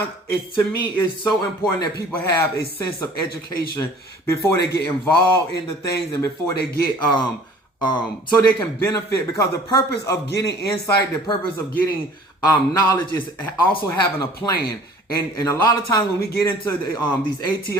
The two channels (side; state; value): both; normal; correlation 0.50